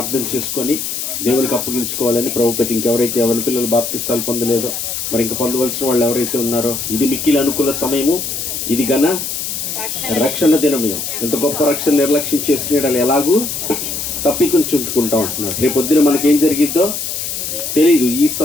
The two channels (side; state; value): left; noise; hiss, 4 dB below the sound